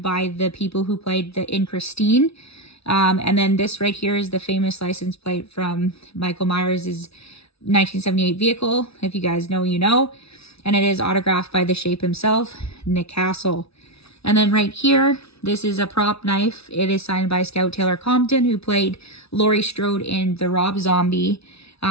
by the people who played in Christine. And then this right here is the famous license plate from Michael Myers' 1978 vehicle. If you guys know, you know. And it is autographed by the Shape himself, Nick Castle. And then right here, this is a prop knife. It is signed by Scout Taylor Compton, who played Laurie Strode in the Rob Zombie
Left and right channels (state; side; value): late; right; 0.78 ms